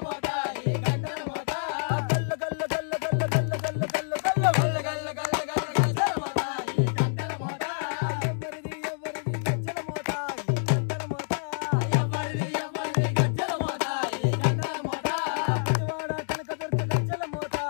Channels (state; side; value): silent; right; digital silence